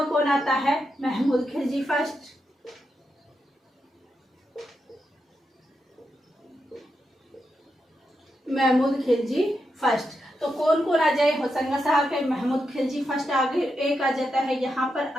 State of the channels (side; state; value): both; normal; correlation 0.85